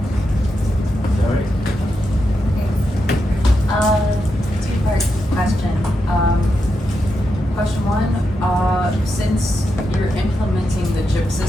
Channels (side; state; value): both; normal; correlation 0.85